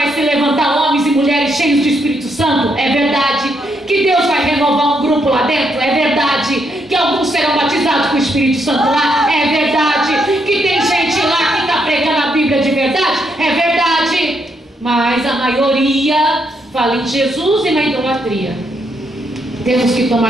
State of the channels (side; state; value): both; normal; correlation 0.77